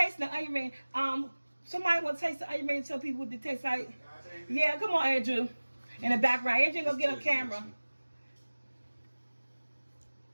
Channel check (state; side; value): inverted; both; correlation -1.00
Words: the onion ring. Somebody want to taste the onion ring and tell people what they taste like? Yeah, come on, Andrew. In the background. Andrew gonna get on camera.